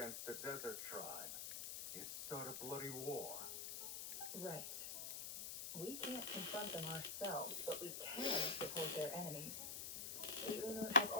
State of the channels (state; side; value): noise; left; hiss, 5 dB below the sound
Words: a desert tribe, it'd start a bloody war. Right. We can't confront them ourselves, but we can support their enemies. The Unut have